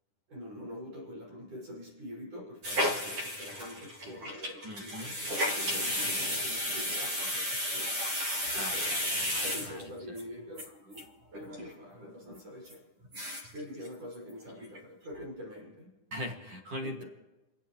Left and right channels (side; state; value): left; late; 10 ms